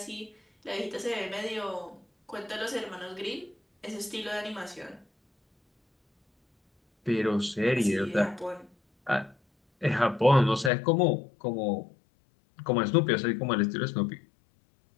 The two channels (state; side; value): drops out; right; at 10.7 s